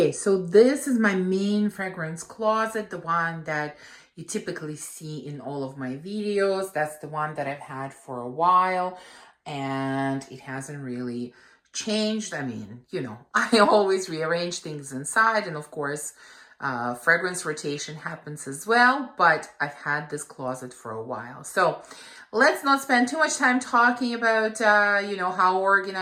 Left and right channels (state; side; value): identical; both; correlation 1.00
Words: so this is my main fragrance closet, the one that you typically see in all of my videos. That's the one that I've had for a while, and it hasn't really changed. I mean, I always rearrange things inside, and of course, fragrance rotation happens as well, but I've had this closet for a while. So let's not spend too much time talking about, how